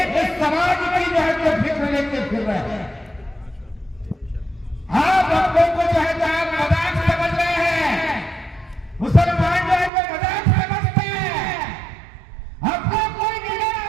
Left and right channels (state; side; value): drops out; left; at 9.9 s